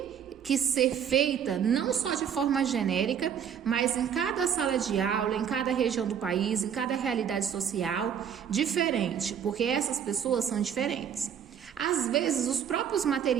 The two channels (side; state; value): left; quieter; 8.3 dB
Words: que ser feita não só de forma genérica, mas em cada sala de aula, em cada região do país, em cada realidade social diferente, porque essas pessoas são diferentes. Às vezes, os próprios